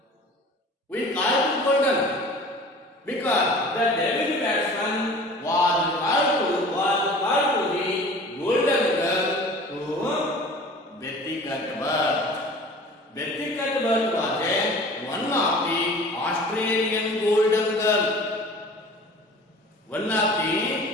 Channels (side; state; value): both; normal; correlation 0.43